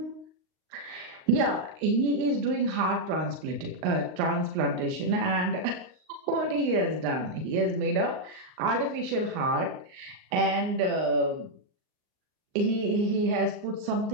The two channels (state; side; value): late; left; 39 ms